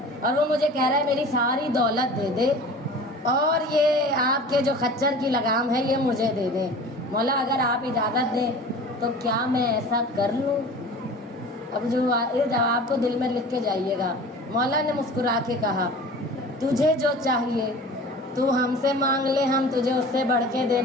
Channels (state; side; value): normal; both; correlation 0.40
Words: और वो मुझे कह रहा है मेरी सारी दौलत दे दे और ये आपके जो खच्चर की लगाम है ये मुझे दे दे। मौला अगर आप इजाज़त दें तो क्या मैं ऐसा कर लूँ? अब जो ये जवाब को दिल में लिख के जाइएगा। मौला ने मुस्कुरा के कहा, तुझे जो चाहिए तू हमसे मांग ले, हम तुझे उससे बढ़ के